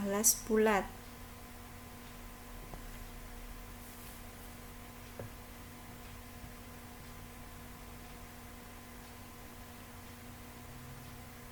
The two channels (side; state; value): both; identical; correlation 1.00